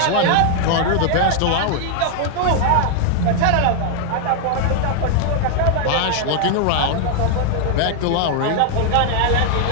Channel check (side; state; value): both; different; correlation 0.00